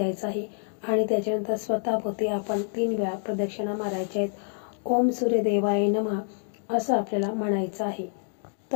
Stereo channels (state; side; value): silent; right; digital silence